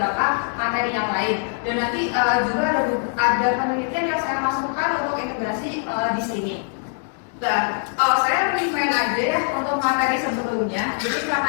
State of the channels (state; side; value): silent; right; 56 dB below the other